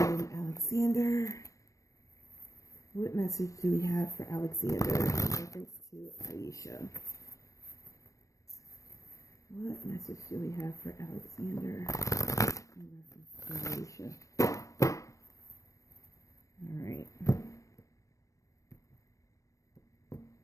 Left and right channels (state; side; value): late; right; 0.16 ms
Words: Alexander. What message do we have for Alexander in reference to Aisha? What message do we have for Alexander in reference to Aisha? All right.